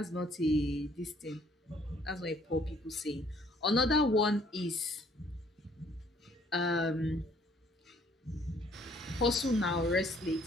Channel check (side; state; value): both; normal; correlation 0.61